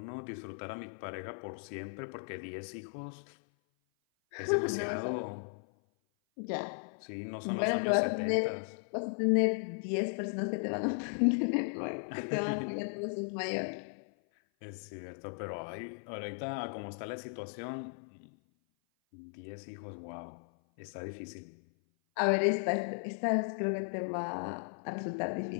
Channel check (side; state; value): right; silent; 54 dB below the other